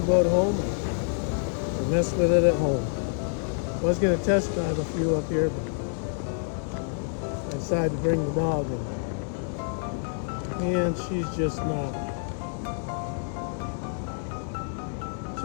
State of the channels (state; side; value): silent; right; digital silence